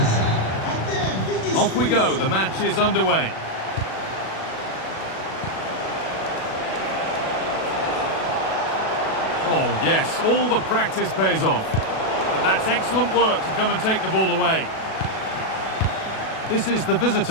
Atev. Off we go, the match is underway. Oh yes, all the practice pays off. But that's excellent work to come and take the ball away. This is the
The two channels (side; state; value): right; late; 37 ms